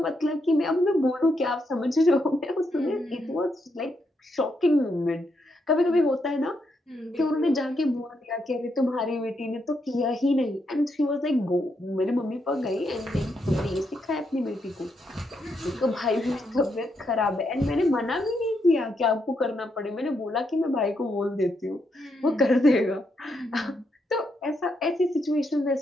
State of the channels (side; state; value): both; normal; correlation 0.80